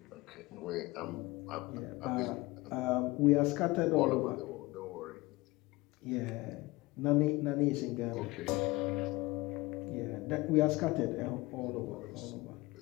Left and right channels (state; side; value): quieter; right; 21.5 dB